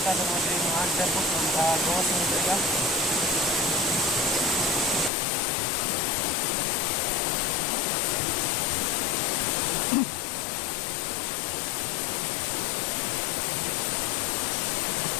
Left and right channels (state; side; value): drops out; right; at 5.1 s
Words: dengan mga hunter po ng gawas ng talaga.